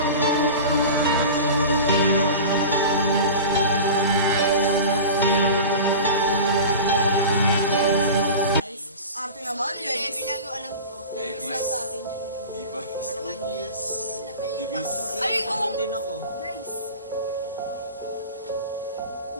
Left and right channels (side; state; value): both; inverted; correlation -0.33